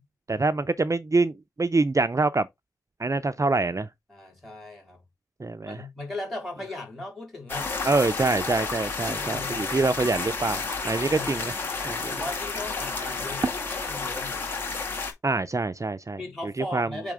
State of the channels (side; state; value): both; normal; correlation 0.66